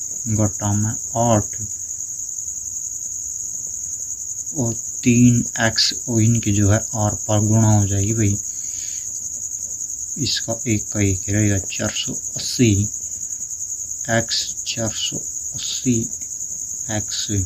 घटा में 8 और 3x और इनकी जो है आर पार गुणा हो जाएगी भाई, इसका एक का एक रहेगा 480 x 480 x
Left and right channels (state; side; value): identical; both; correlation 1.00